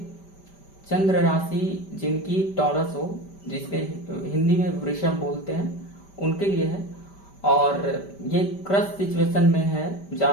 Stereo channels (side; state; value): right; late; 5.1 ms